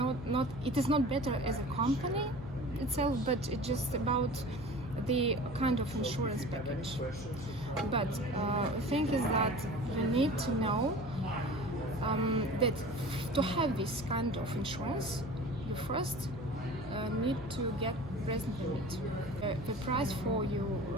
It is not better as a company itself, but it's just about the kind of insurance package. But the thing is that you need to know that to have this kind of insurance, you first need to get resident permit. The price for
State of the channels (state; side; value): noise; left; hum, 13 dB below the sound